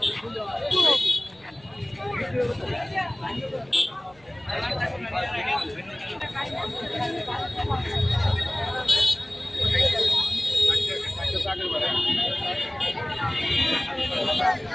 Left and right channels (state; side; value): noise; right; hum, 29 dB below the sound